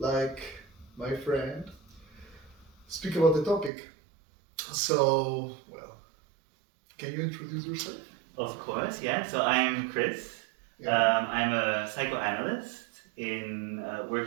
my friend, speak about the topic? So, well, can you introduce yourself? Of course, yeah. So I'm Chris. Yeah. I'm a psychoanalyst in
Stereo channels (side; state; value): left; drops out; at 3.7 s